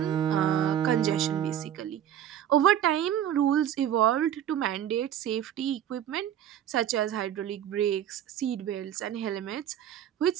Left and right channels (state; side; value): quieter; left; 10.5 dB